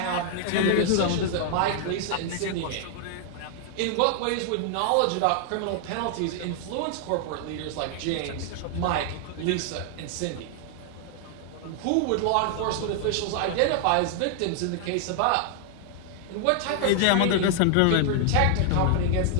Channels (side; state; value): both; different; correlation 0.00